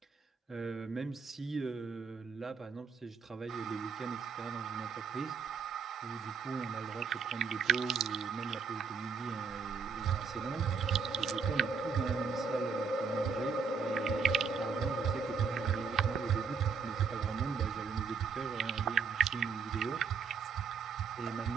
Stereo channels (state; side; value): quieter; left; 5.6 dB